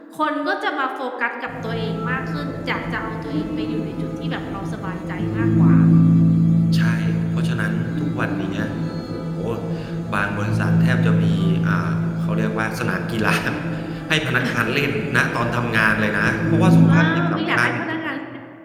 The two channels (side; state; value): both; identical; correlation 1.00